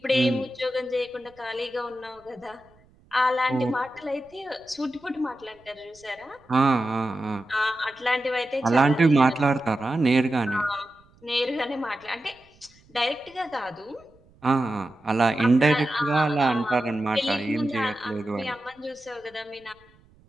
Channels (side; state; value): right; noise; rumble, 30 dB below the sound